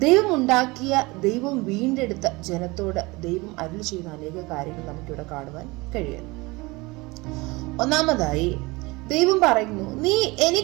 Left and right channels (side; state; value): left; quieter; 23.5 dB